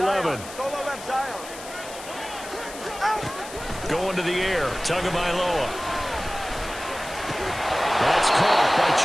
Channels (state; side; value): noise; left; hiss, 14 dB below the sound